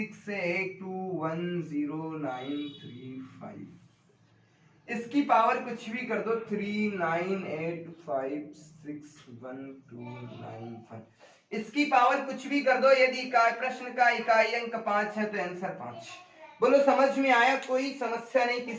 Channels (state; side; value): identical; both; correlation 1.00